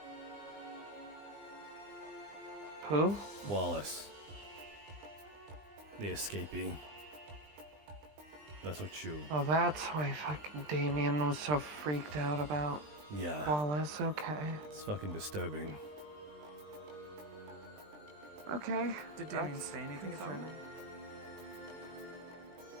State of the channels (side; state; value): left; late; 20 ms